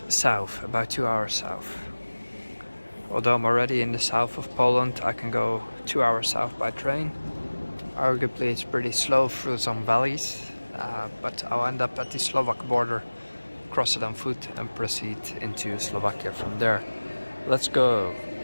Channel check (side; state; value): both; inverted; correlation -1.00